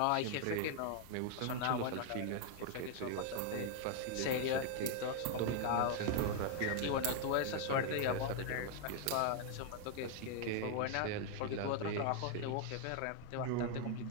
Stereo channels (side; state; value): both; different; correlation 0.00